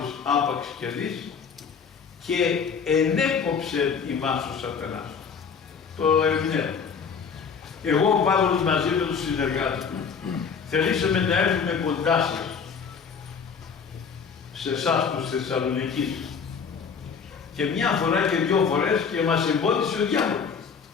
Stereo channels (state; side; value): quieter; right; 6.2 dB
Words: άπαξ και δεις, και ενέκοψε ημάς ο σατανάς. Το ερμηνεύω. Εγώ ο Παύλος μαζί με τους συνεργάτες μου θελήσαμε να έρθουμε κοντά σας, σε εσάς τους Θεσσαλονικείς. Και μια φορά και 2 φορές και μας εμπόδισε ο διάβολος.